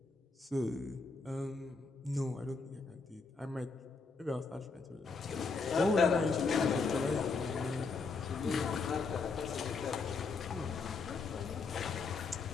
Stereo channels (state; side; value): quieter; right; 4.4 dB